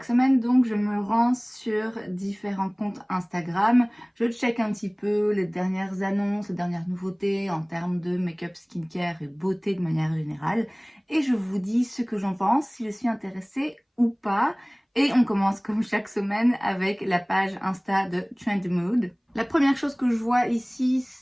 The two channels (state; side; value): identical; both; correlation 1.00